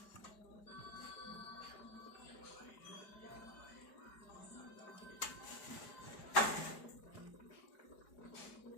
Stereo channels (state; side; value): late; right; 4.9 ms